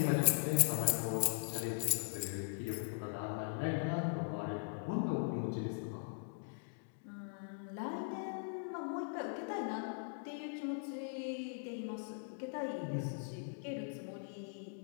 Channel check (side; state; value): right; silent; digital silence